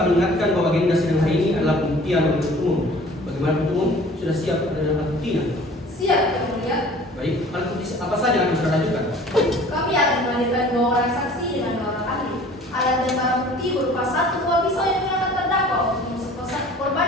ingatkan bahwa agenda sidang hari ini adalah pembuktian oleh umum. Bagaimana penuntut umum sudah siap dengan alat buktinya? Siap yang mulia. Baik, alat bukti apa saja yang akan saudara ajukan? Kami akan menghadirkan 2 orang saksi dengan 2 orang ahli. Alat dan barang bukti berupa 1 buah pisau yang digunakan terdakwa untuk menusuk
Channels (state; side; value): normal; both; correlation 0.48